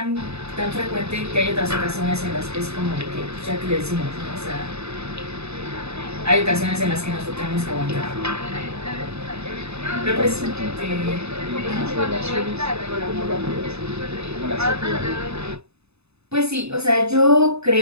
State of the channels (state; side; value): late; left; 0.80 ms